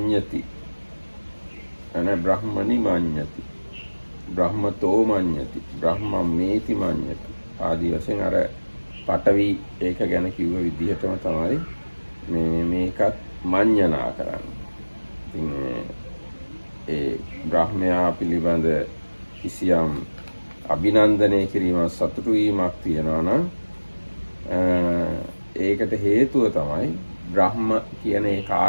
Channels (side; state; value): both; inverted; correlation -1.00